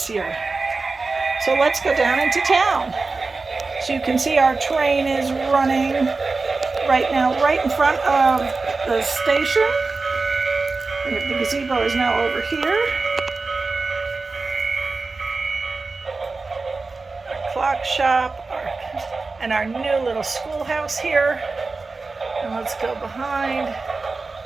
year. So let's go down into town. So you can see our train is running right now, right in front of the station. The gazebo is now over here. Our clock shop, and our new little schoolhouse here. And let's go behind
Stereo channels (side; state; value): left; quieter; 3.9 dB